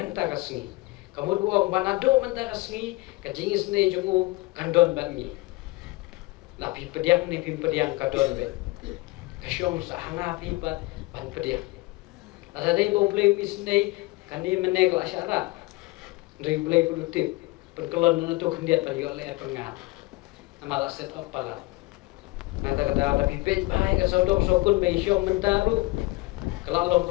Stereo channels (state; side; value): quieter; right; 21.4 dB